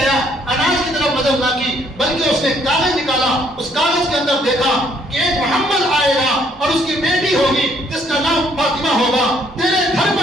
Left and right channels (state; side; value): normal; both; correlation 0.66